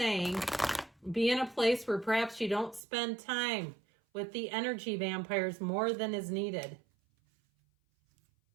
be in a place where perhaps you don't spend time with the energy vampires more than is needed.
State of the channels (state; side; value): drops out; left; at 2.8 s